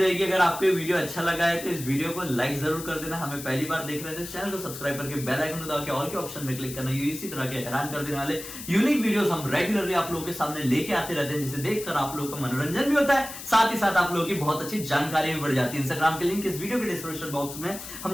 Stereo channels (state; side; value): noise; left; hiss, 11 dB below the sound